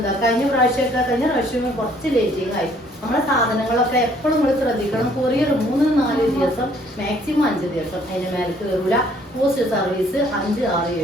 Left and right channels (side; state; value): both; normal; correlation 0.61